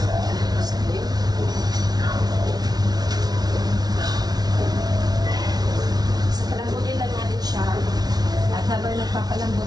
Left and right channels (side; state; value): left; late; 0.19 ms